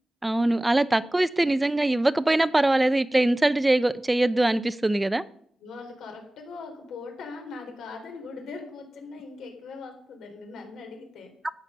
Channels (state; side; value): normal; both; correlation 0.98